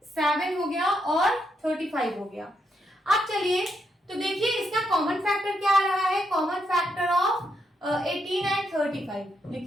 7 हो गया और 35 हो गया। अब चलिए तो देखिए इसका कॉमन फैक्टर क्या आ रहा है, कॉमन फैक्टर ऑफ 18 एंड 35।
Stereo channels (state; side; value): normal; both; correlation 0.79